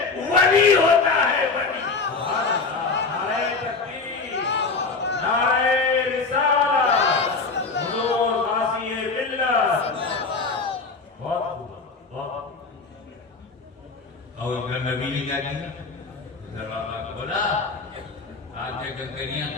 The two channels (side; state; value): right; quieter; 4.2 dB